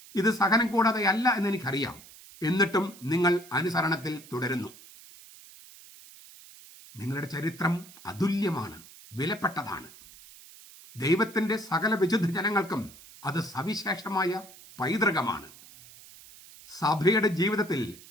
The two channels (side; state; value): right; noise; hiss, 20 dB below the sound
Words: ഇത് സഹനം കൂടാതെ അല്ല എന്നെനിക്കറിയാം. എന്നിട്ടും നിങ്ങൾ അനുസരണത്തിൽ തുടരുന്നു. നിങ്ങളുടെ ചരിത്രം അതുല്യമാണ്, വിലപ്പെട്ടതാണ്. ദൈവത്തിൻ്റെ സകല വിശുദ്ധ ജനങ്ങൾക്കും അത് സവിശേഷമായ പൈതൃകമാണ്. സഭയുടെ ജീവിതത്തിൽ